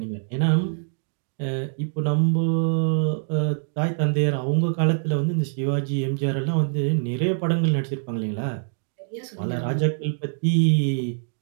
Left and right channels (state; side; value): silent; left; digital silence